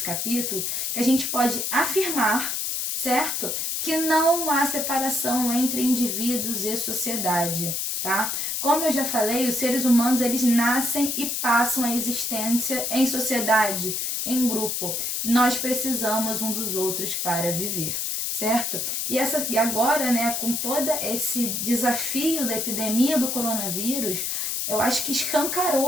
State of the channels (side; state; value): left; noise; hiss, 1 dB below the sound